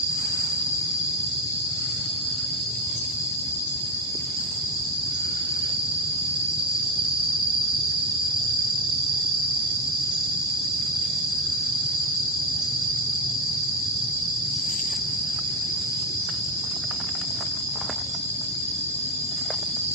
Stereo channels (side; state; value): both; normal; correlation 0.15